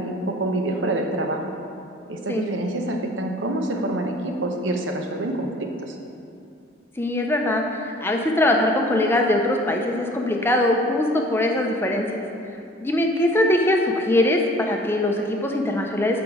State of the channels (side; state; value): both; normal; correlation 0.50